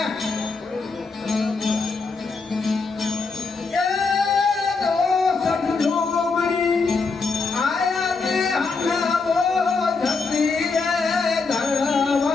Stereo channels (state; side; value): quieter; right; 4.3 dB